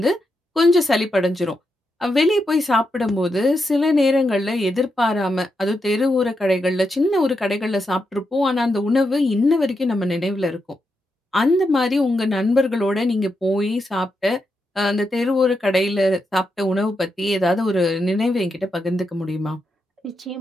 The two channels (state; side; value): normal; both; correlation 0.84